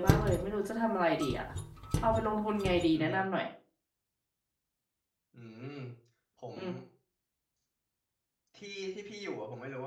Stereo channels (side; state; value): both; identical; correlation 1.00